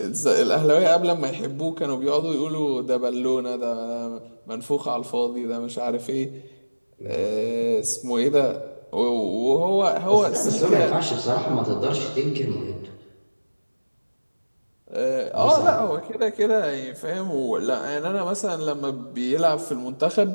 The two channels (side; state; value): both; inverted; correlation -1.00